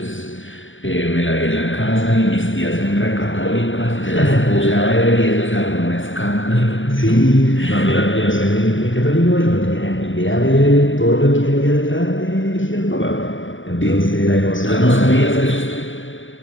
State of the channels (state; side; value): late; right; 0.56 ms